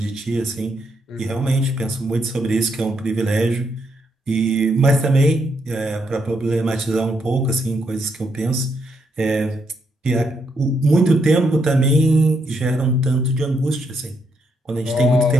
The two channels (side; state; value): both; normal; correlation 0.77